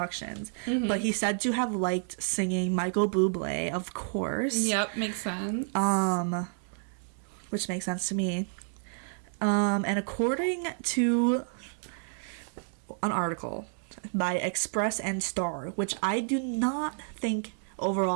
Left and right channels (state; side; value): silent; left; 58 dB below the other